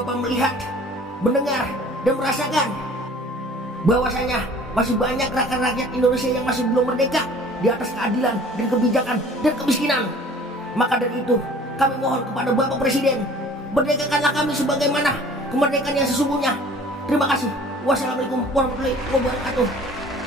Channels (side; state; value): both; normal; correlation 0.49